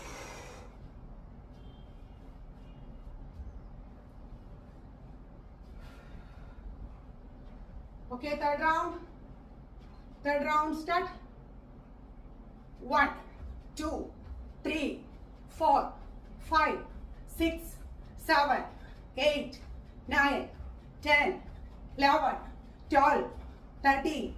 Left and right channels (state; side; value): identical; both; correlation 1.00